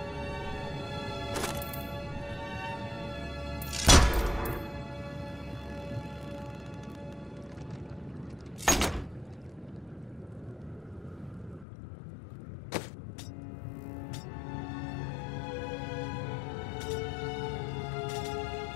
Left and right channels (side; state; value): right; drops out; at 11.7 s